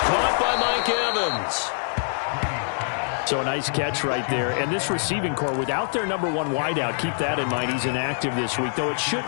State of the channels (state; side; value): silent; right; digital silence